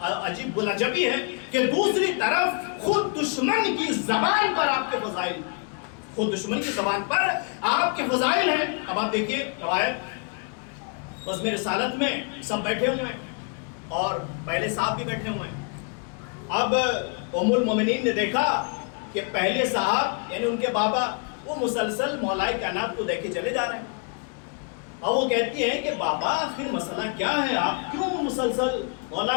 بلجبی ہے کہ دوسری طرف خود دشمن کی زبان پر آپ کے فضائل, خود دشمن کی زبان پر آپ کے فضائل ہیں. اب آپ دیکھیے روایت بزم رسالت میں سب بیٹھے ہوئے ہیں اور پہلے صاحب بھی بیٹھے ہوئے ہیں. اب ام المومنین نے دیکھا کہ پہلے صاحب یعنی ان کے بابا وہ مسلسل مولا کائنات کو دیکھے چلے جا رہے ہیں. اور وہ کہتی ہے کہ بابا آخر مسئلہ کیا ہے, آپ کیوں مسلسل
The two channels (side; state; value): right; quieter; 38.1 dB